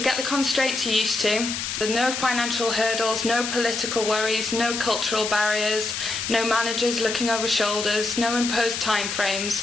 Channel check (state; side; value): noise; left; hiss, 4 dB below the sound